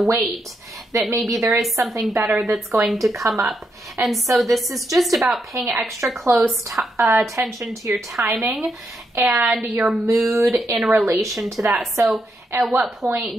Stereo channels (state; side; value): normal; both; correlation 0.81